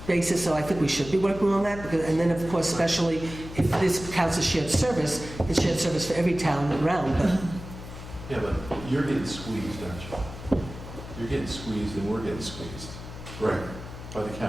basis, so I think we should be working on that. And then, of course, especially if this counts as shared service, it's shared service for every town around, but Yeah, but you're getting squeezed, aren't you? You're getting squeezed and we're getting squeezed. Right. By the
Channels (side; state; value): left; noise; hum, 12 dB below the sound